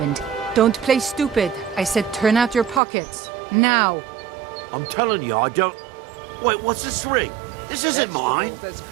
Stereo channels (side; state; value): left; drops out; at 2.8 s